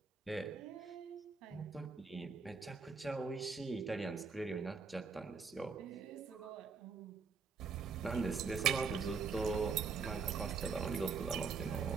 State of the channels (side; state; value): left; quieter; 5.2 dB